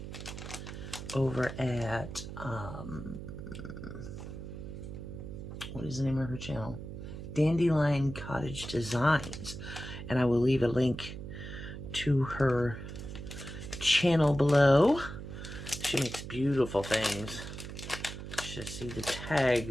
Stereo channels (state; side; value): noise; right; hum, 9 dB below the sound